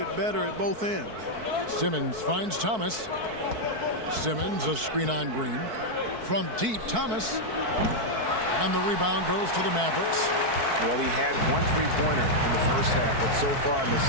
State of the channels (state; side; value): late; left; 4.6 ms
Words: better at both ends. Simmons finds Thomas. Simmons a screen on Green. From deep, Thomas. And the rebound goes to the Mavericks. Well, he had 1 3-pointer in the first half, but so far in the